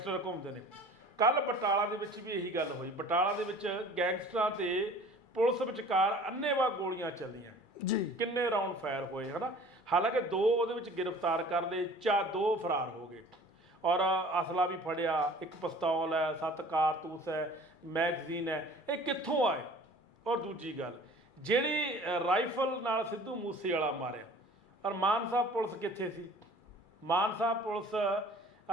ਘੁੰਮਦੇ ਨੇ। ਕੱਲ ਬਟਾਲਾ ਦੇ ਵਿੱਚ ਵੀ ਇਹੀ ਗੱਲ ਹੋਈ, ਬਟਾਲਾ ਦੇ ਵਿੱਚ ਗੈਂਗਸਟਰਾਂ ਤੇ ਪੁਲਿਸ ਵਿਚਕਾਰ ਅੰਨ੍ਹੇਵਾਹ ਗੋਲੀਆਂ ਚੱਲੀਆਂ ਜੀ, ਕਿੰਨੇ ਰਾਉਂਡ ਫਾਇਰ ਹੋਏ ਹਨਾ। ਹਾਲਾਂਕਿ 2 ਉਹਦੇ ਵਿੱਚ ਗ੍ਰਿਫਤਾਰ ਕਰ ਲਏ, 2 ਫਰਾਰ ਹੋ ਗਏ, ਔਰ ਅਸਲਾ ਵੀ ਫੜਿਆ, ਇੱਕ ਪਿਸਤੌਲ ਹੈ, 7 ਕਾਰਤੂਸ ਹੈ, ਮੈਗਜ਼ੀਨ ਹੈ। ਇਹ ਕਿੱਥੋਂ ਆਏ? ਔਰ ਦੂਜੀ ਗੱਲ, ਜਿਹੜੀ ਰਾਈਫਲ ਨਾਲ ਸਿੱਧੂ ਮੂਸੇਵਾਲਾ ਮਾਰਿਆ, ਔਰ ਮਾਨ ਸਾਹਿਬ ਪੁਲਿਸ ਕਿੱਥੇ ਸੀ? ਮਾਨ ਸਾਹਿਬ ਪੁਲਿਸ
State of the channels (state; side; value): late; right; 2.3 ms